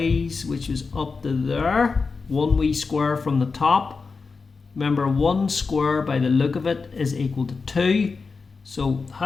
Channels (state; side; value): quieter; right; 4.6 dB